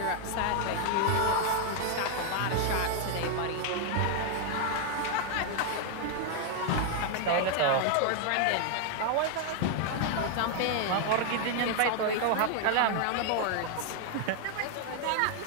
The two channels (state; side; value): different; both; correlation 0.00